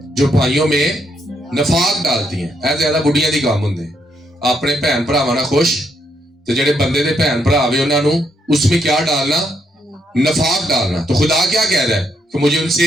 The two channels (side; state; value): both; normal; correlation 0.76